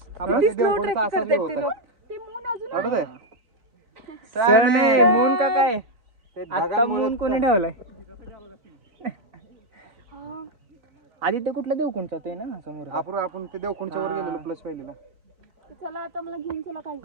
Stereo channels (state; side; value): late; left; 3.9 ms